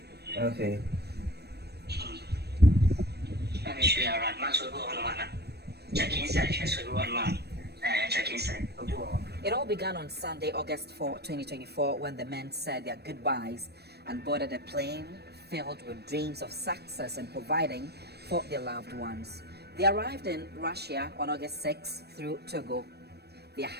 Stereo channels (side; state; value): left; late; 0.47 ms